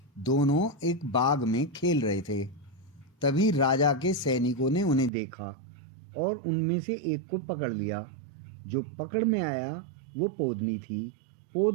दोनों एक बाग में खेल रहे थे। तभी राजा के सैनिकों ने उन्हें देखा और उनमें से एक को पकड़ लिया। जो पकड़ में आया वो पोदनी थी।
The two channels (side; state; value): left; drops out; at 5.1 s